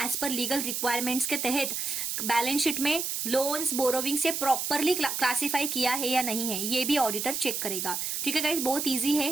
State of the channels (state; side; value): noise; right; hiss, 2 dB below the sound